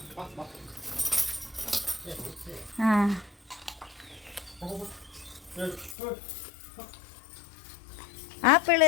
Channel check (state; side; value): drops out; right; at 6.0 s